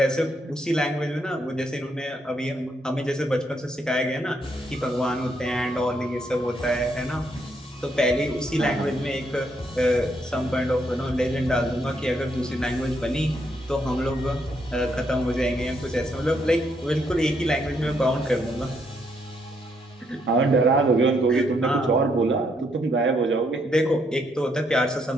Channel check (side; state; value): both; normal; correlation 0.74